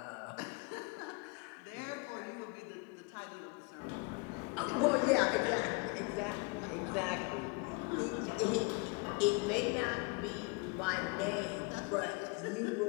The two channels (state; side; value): quieter; right; 30.5 dB